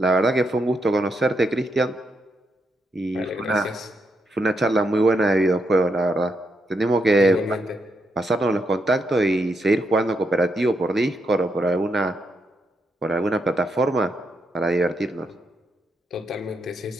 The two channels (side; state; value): both; normal; correlation 0.81